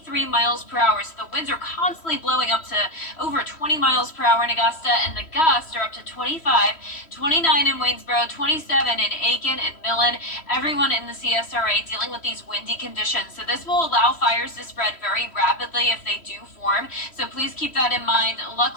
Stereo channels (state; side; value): late; right; 3.1 ms